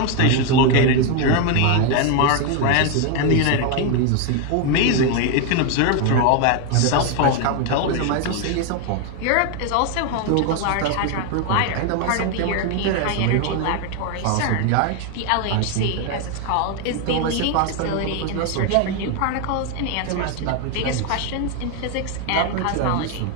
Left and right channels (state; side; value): different; both; correlation 0.01